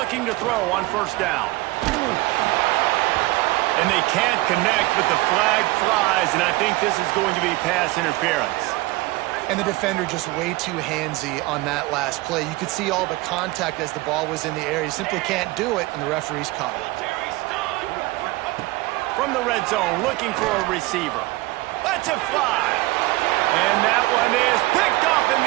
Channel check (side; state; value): left; quieter; 20.7 dB